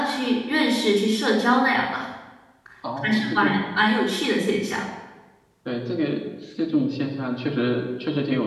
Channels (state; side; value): identical; both; correlation 1.00